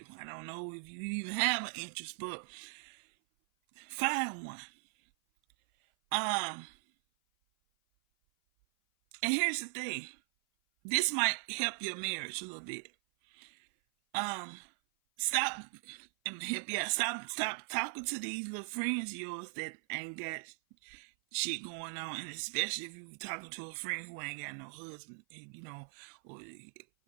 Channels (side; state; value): left; silent; 52 dB below the other